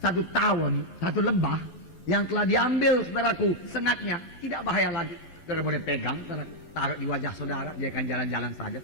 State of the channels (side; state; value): right; late; 11 ms